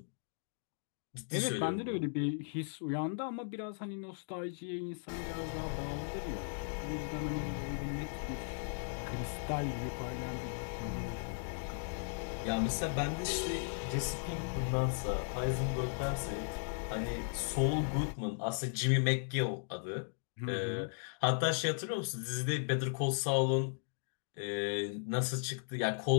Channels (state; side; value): silent; right; digital silence